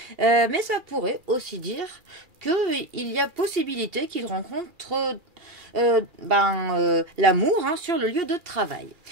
Mais ça pourrait aussi dire qu'il y a possibilité qu'il rencontre l'amour sur le lieu de travail.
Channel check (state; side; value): late; left; 2.4 ms